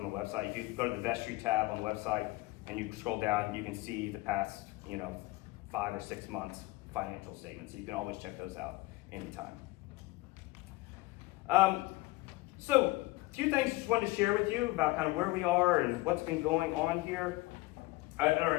the website. If you go to the vestry tab on the website and you scroll down, you can see the past, 5 or 6 months financial statements. So you can always check those out anytime. So a few things just wanted to share with you about kind of where we are and what's been going on here. At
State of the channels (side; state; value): right; quieter; 20.8 dB